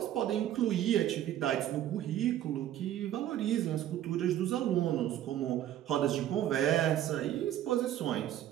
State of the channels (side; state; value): left; quieter; 12.0 dB